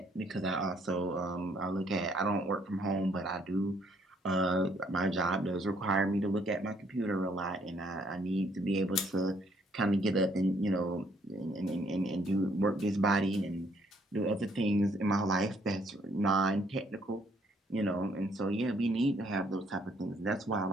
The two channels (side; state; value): both; normal; correlation 0.67